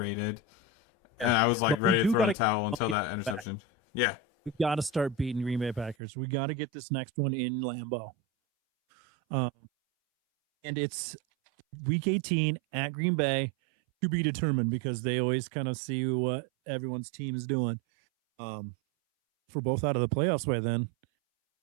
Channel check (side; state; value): left; drops out; at 6.0 s